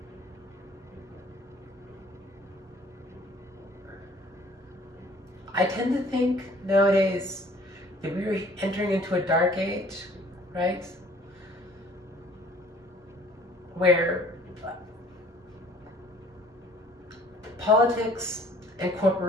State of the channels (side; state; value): both; normal; correlation 0.55